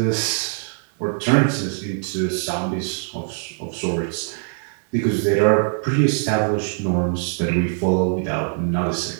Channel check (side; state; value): left; silent; 64 dB below the other